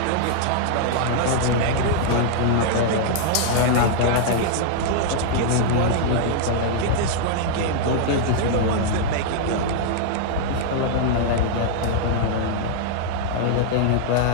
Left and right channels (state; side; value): different; both; correlation -0.01